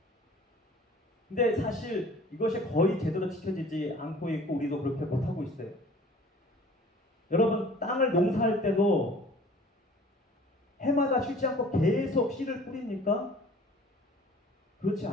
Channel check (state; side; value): normal; both; correlation 0.49